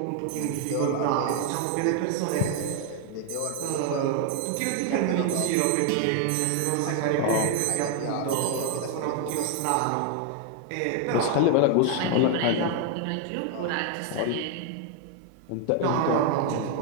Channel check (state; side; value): different; both; correlation 0.01